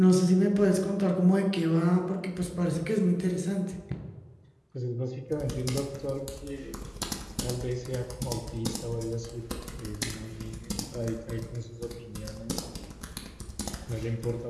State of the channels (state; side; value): identical; both; correlation 1.00